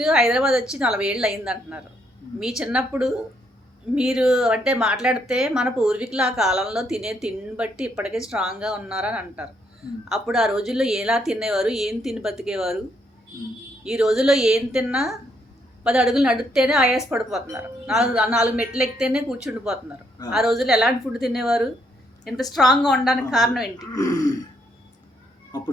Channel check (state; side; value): normal; both; correlation 0.73